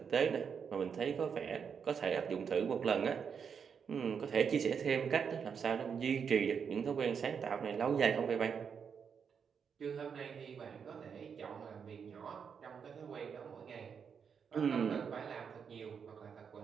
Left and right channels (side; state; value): left; quieter; 6.7 dB